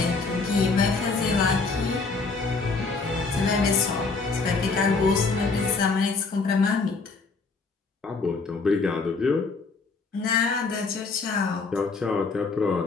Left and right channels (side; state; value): right; quieter; 4.2 dB